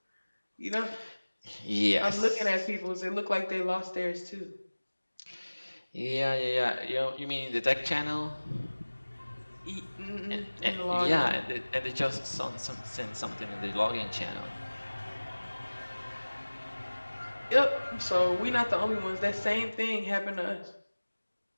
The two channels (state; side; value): inverted; both; correlation -1.00